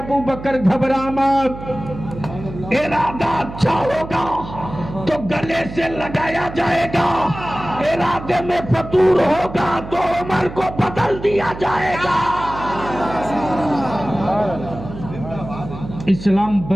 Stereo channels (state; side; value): noise; right; hum, 11 dB below the sound